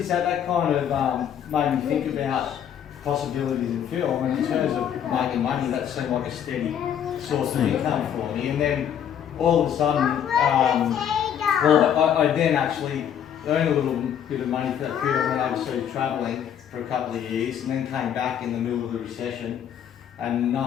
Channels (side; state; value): right; quieter; 9.2 dB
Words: that kind of made me think about possibilities in film, and in terms of making money, that seemed like a steady source of income for me. And then all of a sudden, I then actually earned a little bit of money for that period. I went overseas travelling for a couple of years, and then came back in the middle of the recession, and no